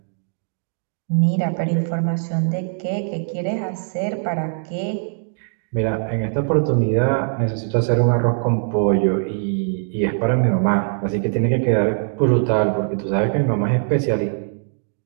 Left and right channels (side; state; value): left; silent; digital silence